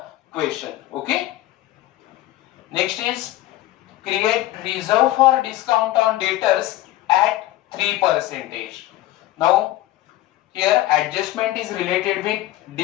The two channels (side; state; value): right; quieter; 15.6 dB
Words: question. Okay. Next is create reserve for discount on debtors at 3%. Now here adjustment is related with